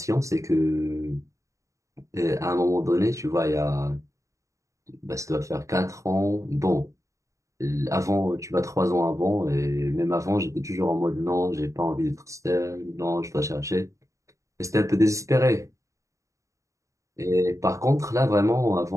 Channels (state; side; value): late; left; 0.15 ms